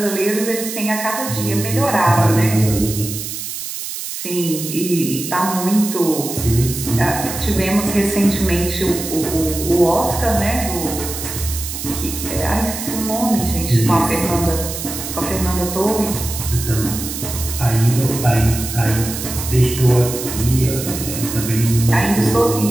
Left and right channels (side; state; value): right; noise; hiss, 7 dB below the sound